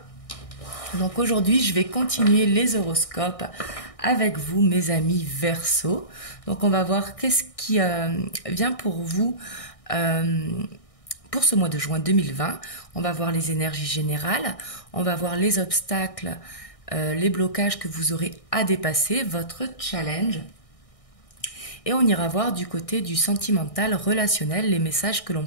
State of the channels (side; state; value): right; late; 1.6 ms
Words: Donc aujourd'hui, je vais continuer les horoscopes avec vous, mes amis Verseau. Donc on va voir qu'est-ce qui vient pour vous pour ce mois de juin 2020. On va voir les énergies générales, on va voir les obstacles, les blocages que vous aurez à dépasser, votre challenge. Et on ira voir du côté du sentimental, relationnel, les messages que l'on